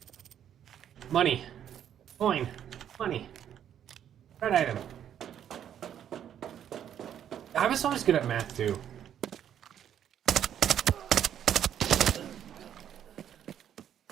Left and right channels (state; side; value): quieter; left; 9.8 dB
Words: Money. Coin. Money. Red item. I was always good at math too.